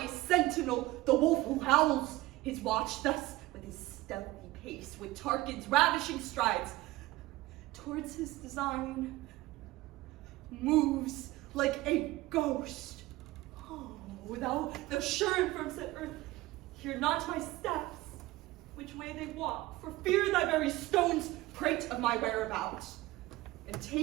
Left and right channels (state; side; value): quieter; left; 18.4 dB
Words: sentinel, the wolf who howls his watch thus with his stealthy pace, with Tarquin's ravishing strides, towards his design moves like a ghost. Oh, thou sure and firm set earth, hear not my steps, which way they walk, for fear thy very stones prate of my whereabouts, and